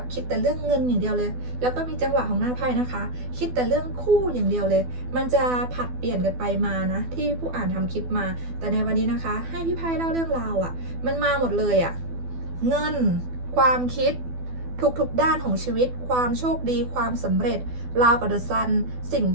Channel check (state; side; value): late; left; 12 ms